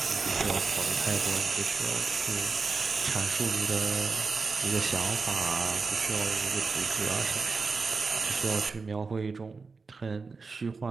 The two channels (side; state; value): left; quieter; 4.5 dB